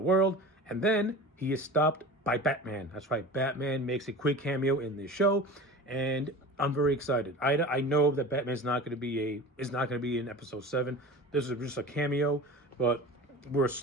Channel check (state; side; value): normal; both; correlation 0.35